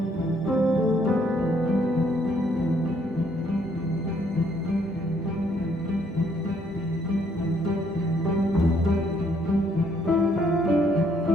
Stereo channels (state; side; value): normal; both; correlation 0.68